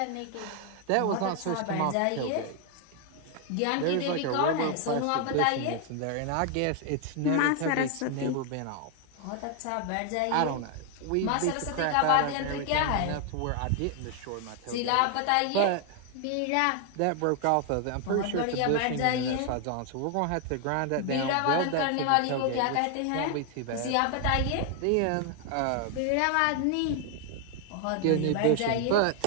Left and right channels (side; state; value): both; different; correlation 0.00